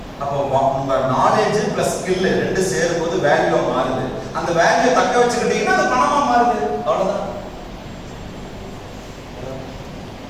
அப்போ உங்க நாலேஜ் பிளஸ் ஸ்கில் ரெண்டு சேரும் போது வேல்யூ மாறுது. அந்த வேல்யூ தக்க வச்சுக்கிட்டீங்கன்னா அது பணமா மாறுது. அவ்வளவுதான்.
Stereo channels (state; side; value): identical; both; correlation 1.00